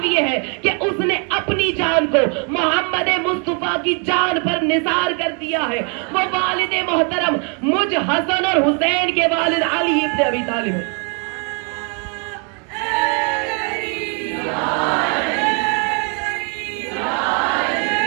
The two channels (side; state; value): left; quieter; 37.4 dB